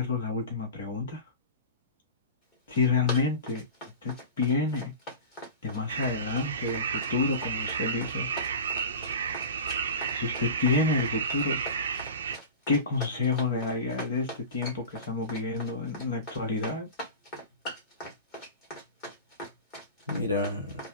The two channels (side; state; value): both; inverted; correlation -0.32